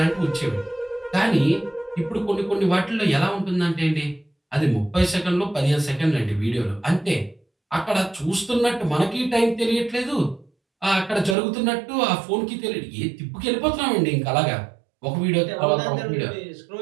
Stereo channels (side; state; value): left; drops out; at 11.4 s